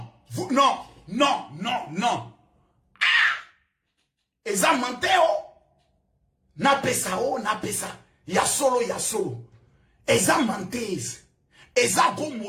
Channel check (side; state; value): both; identical; correlation 1.00